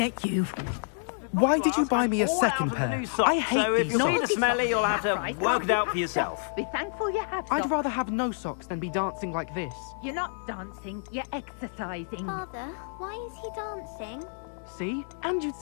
at you. Look at that boy. Why did you buy me a second pair? I hate so these if you see the socks. smelly, you'll have to work it out for yourself. Be thankful you have I'd socks. rather have no socks than be dancing like this. You're not dancing, you're exercising. Father, why is he dancing? See? And you'd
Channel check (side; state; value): right; silent; digital silence